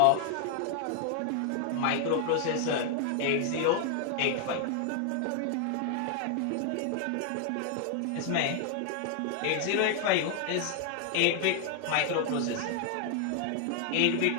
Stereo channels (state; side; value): different; both; correlation 0.00